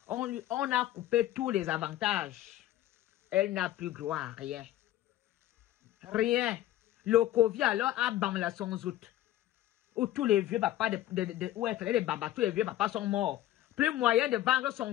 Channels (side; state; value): right; quieter; 14.0 dB